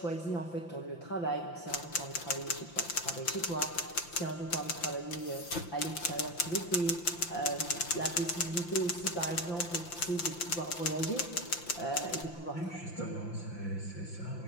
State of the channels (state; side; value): late; right; 5.8 ms